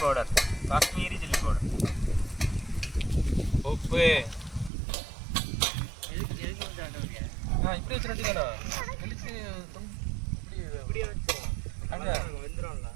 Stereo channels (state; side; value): drops out; left; at 4.7 s